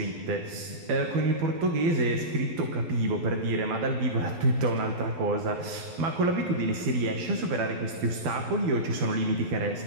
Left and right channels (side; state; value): left; late; 12 ms